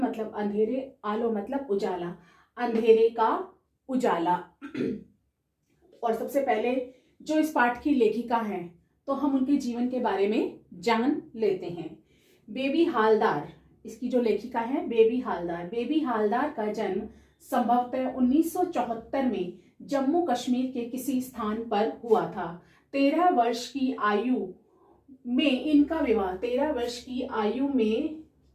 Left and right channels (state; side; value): identical; both; correlation 1.00